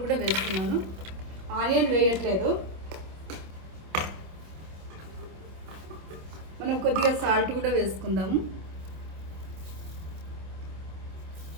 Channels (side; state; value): left; late; 26 ms